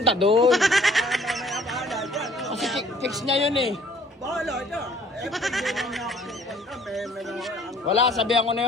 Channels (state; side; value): normal; both; correlation 0.57